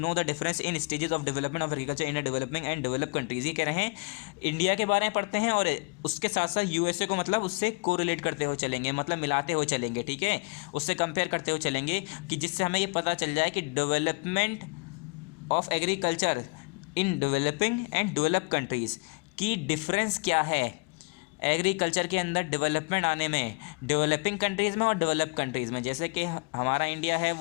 the difference in stages of development of agriculture in developing and develop countries. ये कह रहे हैं इंडिया के बारे में पढ़ते हैं और उसके साथ साथ यूएसए को मतलब उससे कोरिलेट करते हुए चलेंगे, मतलब मिलाते हुए चलेंगे, ठीक है, उससे कंपेयर करते हुए चलेंगे, कि जिससे हमें ये पता चल जाए कि development of agriculture in developing and develop countries की डिफरेंस क्या है एग्रीकल्चर के अंदर डेवलपमेंट आने में, डेवलपिंग कंट्रीज़ में और डेवलप कंट्रीज़ में। जैसे कि हमारा इंडिया है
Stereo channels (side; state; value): right; quieter; 30.6 dB